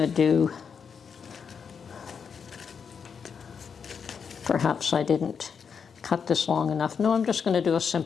do, perhaps I didn't cut this long enough. No, I'm just going to do a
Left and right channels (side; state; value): right; quieter; 6.5 dB